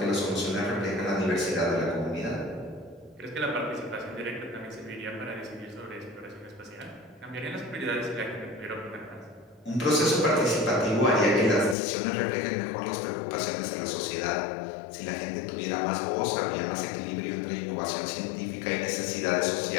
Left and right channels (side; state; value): right; drops out; at 11.8 s